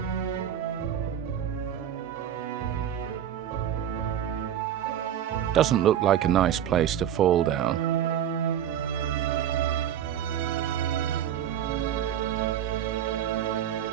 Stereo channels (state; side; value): quieter; left; 10.1 dB